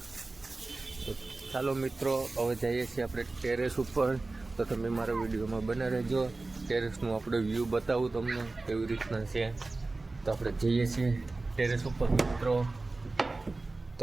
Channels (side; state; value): left; quieter; 3.3 dB